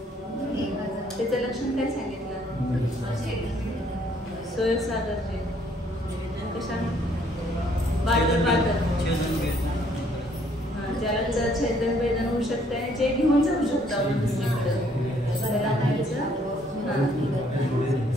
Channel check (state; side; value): normal; both; correlation 0.65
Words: त्याचं लक्षण काय सांगितलं? सोय सागरचे कशा बादर बादर ज्याला छेदन वेदन होऊ शकते जे घेऊन जाऊ शकतो आपण दुसरीकडे